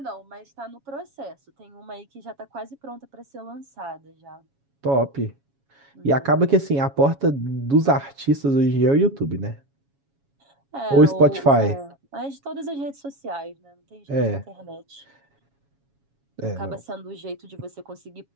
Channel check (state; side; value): late; left; 7.2 ms